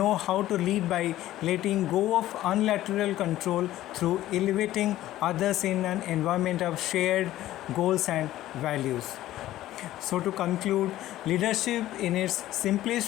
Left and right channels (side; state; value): right; quieter; 14.4 dB